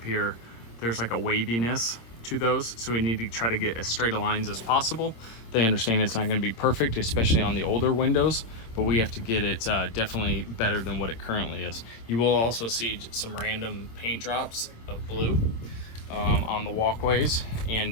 here, there's like a waviness to those, so we need to try to get as straight of lines as possible. They understand it's not going to be perfect, especially on the older windows, but we have to get it definitely better than what it currently is. You will also see some random paint drops of blue on the walkways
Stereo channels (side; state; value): right; late; 26 ms